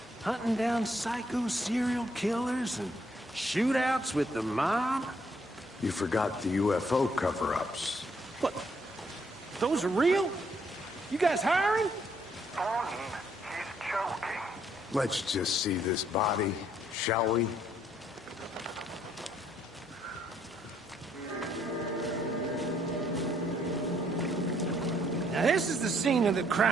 Hunting down psycho serial killers and shootouts with the mob? You forgot the UFO cover-ups. What? Those are real? You guys hiring? Thornton, he's joking. Let's just see this body, shall we? Now this is the scene of the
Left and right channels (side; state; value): both; normal; correlation 0.69